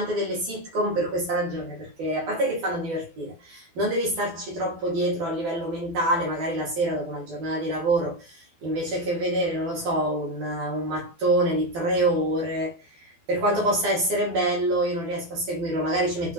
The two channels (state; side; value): late; left; 12 ms